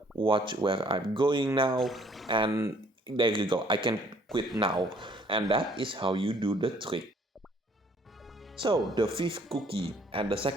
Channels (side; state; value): both; normal; correlation 0.61